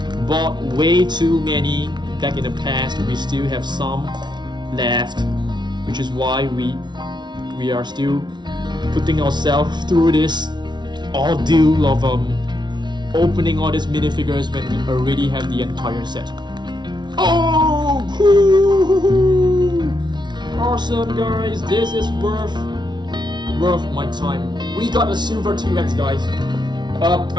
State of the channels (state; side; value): late; left; 0.21 ms